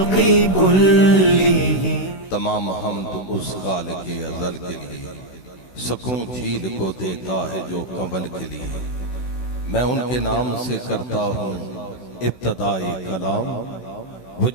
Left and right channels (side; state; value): right; late; 16 ms